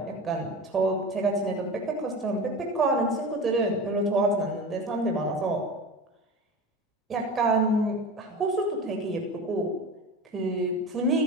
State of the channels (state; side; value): normal; both; correlation 0.30